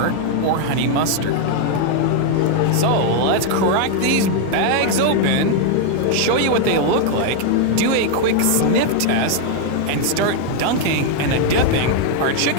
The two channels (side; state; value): both; different; correlation 0.00